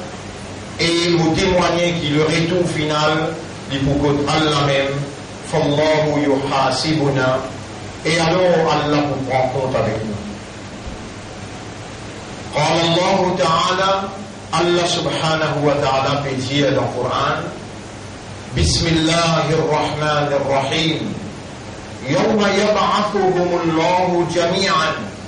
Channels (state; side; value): identical; both; correlation 1.00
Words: Et vous témoignez qu'il le retour final, il faut que Allah même, فالله يحاسبنا. Et alors Allah vous prend compte avec nous. قال الله تعالى, Allah subhanahu wa ta'ala peut dire dans le Coran, Bismillahirrahmanirrahim, Yawma yab'athuhum Allahu jami'an,